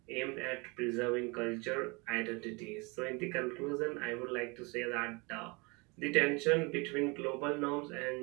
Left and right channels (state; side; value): quieter; left; 28.3 dB